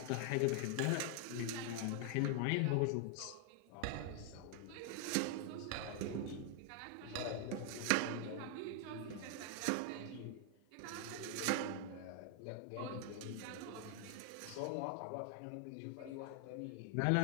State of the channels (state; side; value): different; both; correlation 0.00